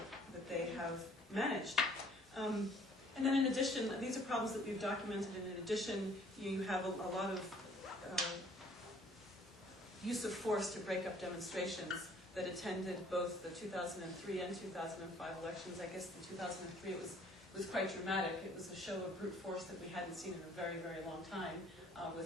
they have managed. And then in addition, these are problems that we've documented, and in addition, you have a lot of use of force to break up demonstrations that attended both the 2003 and 2005 elections. I guess the 2003 it was quite dramatic. It was a show of brute force that we hadn't seen in a very, very long time,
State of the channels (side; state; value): both; normal; correlation 0.58